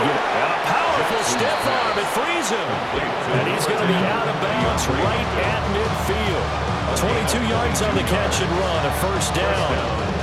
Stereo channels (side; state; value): both; identical; correlation 1.00